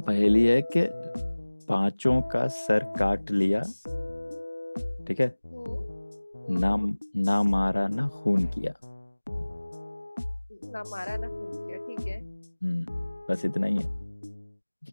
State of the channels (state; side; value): inverted; both; correlation -1.00